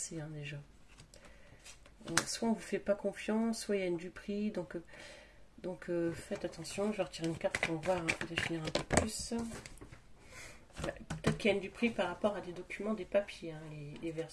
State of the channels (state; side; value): identical; both; correlation 1.00